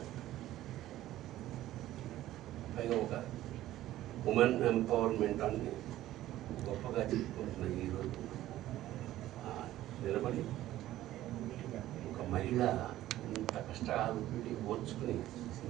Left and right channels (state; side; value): quieter; left; 14.3 dB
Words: పైగా ఒక ఉమెన్ ఎంపవర్మెంట్ అని గొప్పగా చెప్పుకుంటున్న ఈరోజు నిలబడి ఒక మహిళ ఇంత కష్టాలు ఓర్చుకుని